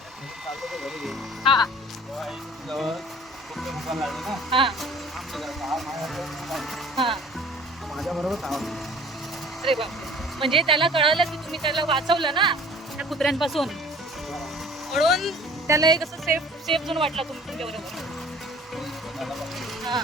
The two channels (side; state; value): both; normal; correlation 0.49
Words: हा हा हा अरे बापरे, म्हणजे त्याला कळालं की तुम्ही त्याला वाचवलं ना त्या कुत्र्यांपासून, म्हणून त्याला एक असं सेफ झोन वाटला तुमच्या बरोबर.